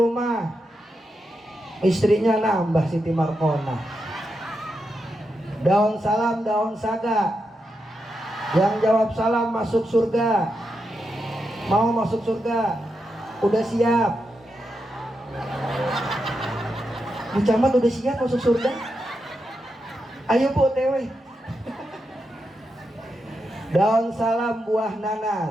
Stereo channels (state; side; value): normal; both; correlation 0.86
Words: istrinya nambah Siti Markona. Daun salam, daun saga. Yang jawab salam masuk surga. Mau masuk surga? Udah siap? Bu Camat udah siap masuk surga? Ayo Bu OTW. Daun salam buah